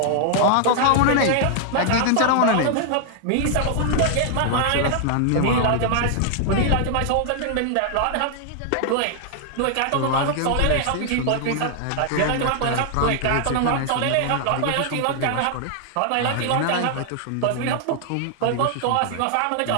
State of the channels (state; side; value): different; both; correlation 0.00